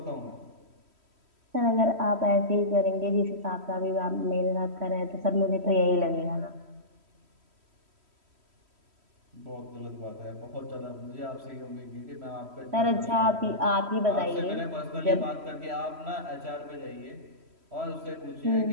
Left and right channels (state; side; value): late; left; 3.1 ms